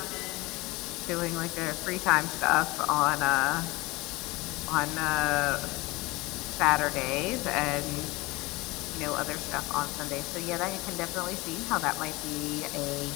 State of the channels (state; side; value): quieter; right; 22.5 dB